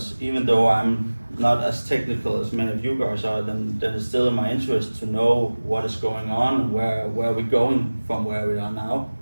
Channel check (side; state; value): both; inverted; correlation -1.00